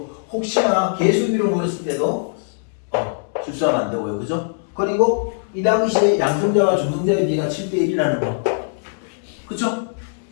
혹시나 개수비로 물었을 때도 실수하면 안 되고요. 그죠? 그리고 이 당시에 양성자와 중성자의 비가 7대 1이라는 거. 그쵸?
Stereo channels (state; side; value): silent; right; digital silence